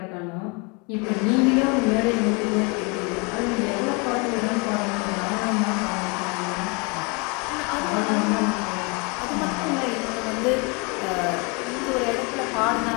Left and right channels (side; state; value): right; quieter; 30.4 dB